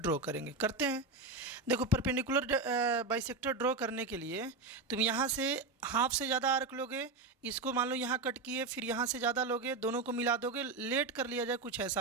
करेंगे, करते हैं। देखो परपेंडिकुलर बाइसेक्टर ड्रॉ करने के लिए तुम यहाँ से हाफ से ज़्यादा आर्क लोगे, इसको मान लो यहाँ कट किए, फिर यहाँ से ज़्यादा लोगे, दोनों को मिला दोगे, लेट कर लिया जाए, कुछ ऐसा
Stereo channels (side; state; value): left; quieter; 3.7 dB